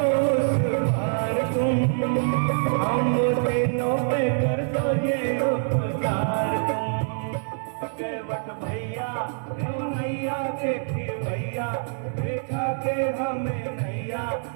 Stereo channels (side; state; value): left; silent; 57 dB below the other